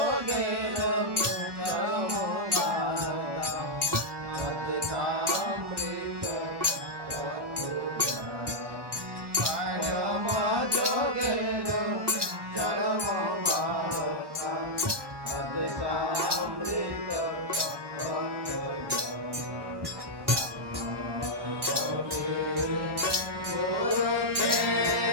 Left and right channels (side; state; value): left; late; 1.2 ms